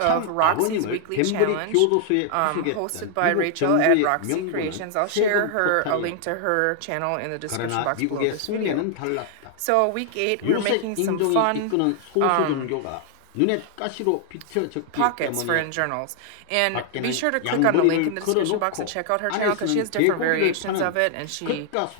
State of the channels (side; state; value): both; different; correlation 0.00